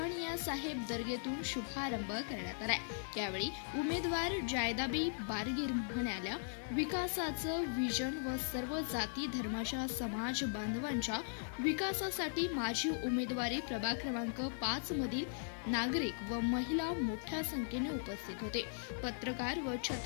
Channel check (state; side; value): silent; right; digital silence